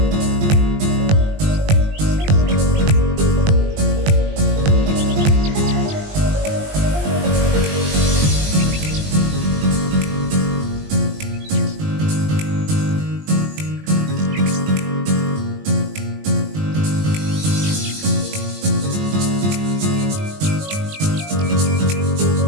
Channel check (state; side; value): late; left; 20 ms